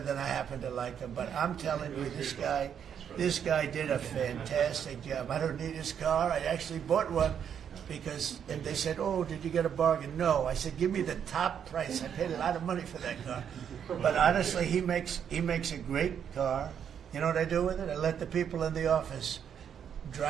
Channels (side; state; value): left; quieter; 8.3 dB